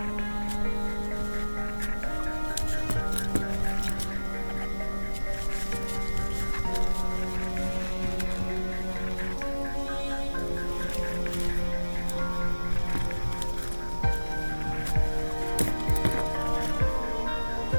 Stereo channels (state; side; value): inverted; both; correlation -1.00